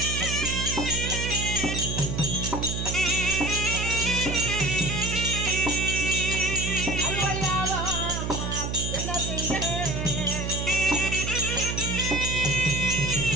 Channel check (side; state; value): right; noise; hum, 3 dB below the sound